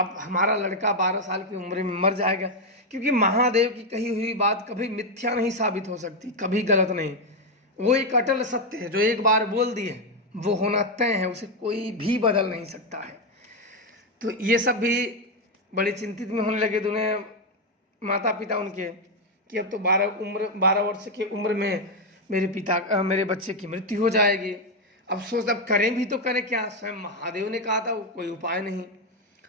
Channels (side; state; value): both; normal; correlation 0.05